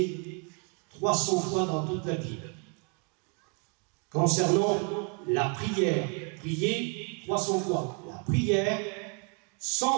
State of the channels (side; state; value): left; quieter; 37.0 dB